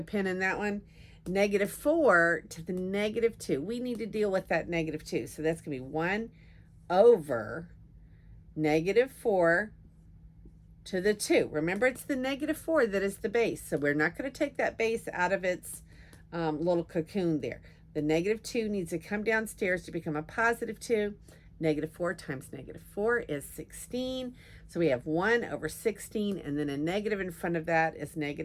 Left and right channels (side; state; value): both; identical; correlation 1.00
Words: pin in that one. -4 to the -2. We need to deal with that -2. So that's going to be 1 over -4 to the 2. Remember, it's the -4 that is the base. So we're not going to take that base out of its little cocoon there. The -2 needs to come downstairs to become a +2. -4 times -4 is 16. So we have 1 over 16, and then a negative in front of that is